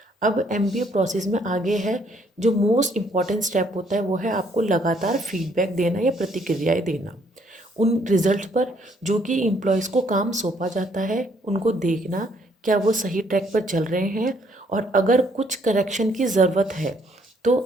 अब MBA process में आगे है जो most important step होता है वो है आपको लगातार फीडबैक देना या प्रतिक्रियाएं देना उन रिजल्ट पर जो कि एम्प्लॉयज़ को काम सौंपा जाता है, उनको देखना क्या वो सही ट्रैक पर चल रहे हैं और अगर कुछ करेक्शन की ज़रूरत है तो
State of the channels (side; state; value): both; normal; correlation 0.67